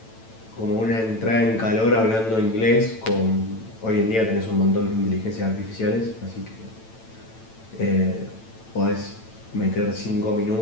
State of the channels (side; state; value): right; late; 9.0 ms